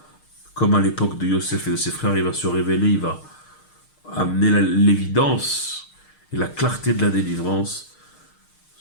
comme à l'époque de Yosef et de ses frères, il va se révéler, il va amener l'évidence et la clarté de la délivrance,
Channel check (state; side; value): late; right; 6.6 ms